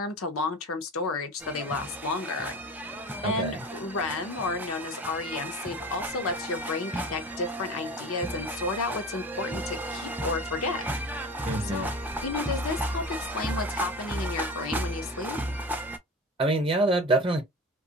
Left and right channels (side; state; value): both; normal; correlation 0.33